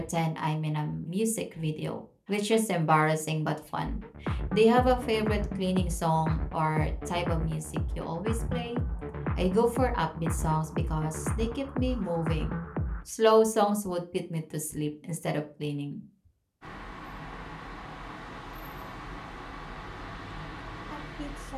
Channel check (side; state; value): both; identical; correlation 1.00